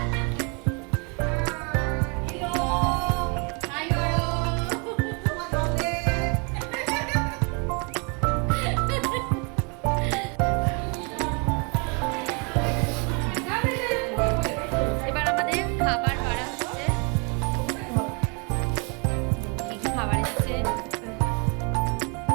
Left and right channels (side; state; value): left; quieter; 33.8 dB